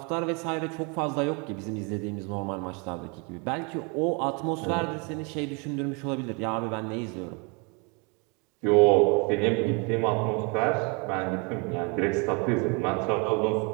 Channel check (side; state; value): left; quieter; 31.2 dB